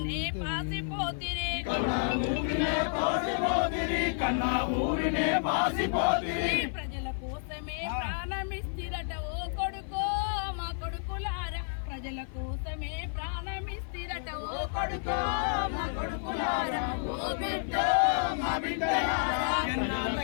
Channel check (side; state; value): right; silent; 56 dB below the other